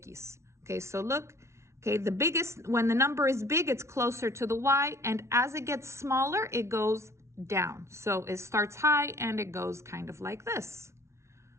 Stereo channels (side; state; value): left; late; 0.13 ms